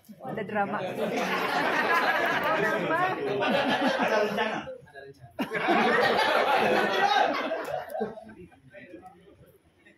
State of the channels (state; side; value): identical; both; correlation 1.00